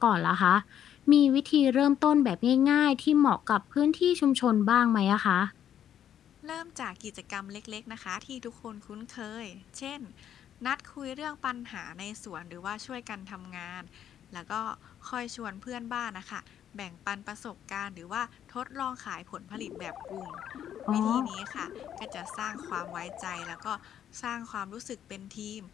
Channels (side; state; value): right; quieter; 10.0 dB